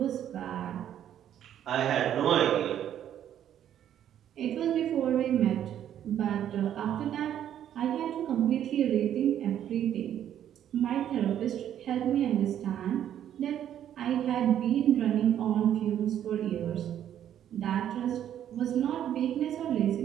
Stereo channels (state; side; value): quieter; left; 10.5 dB